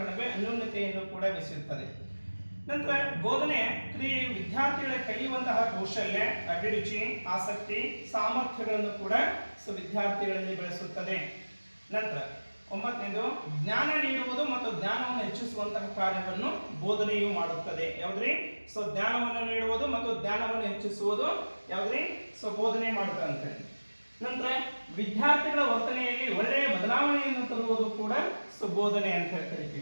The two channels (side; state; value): both; inverted; correlation -1.00